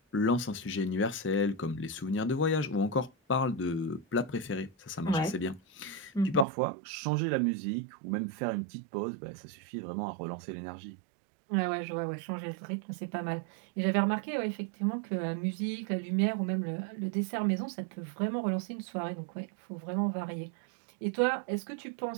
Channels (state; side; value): drops out; left; at 6.5 s